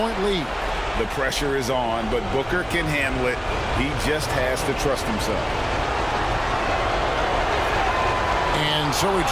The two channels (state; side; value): identical; both; correlation 1.00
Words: lead. The pressure is on, but Booker can handle it. He just has to trust himself. And so he